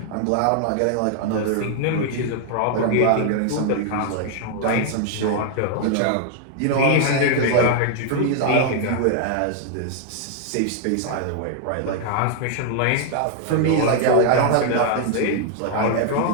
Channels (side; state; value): both; different; correlation 0.00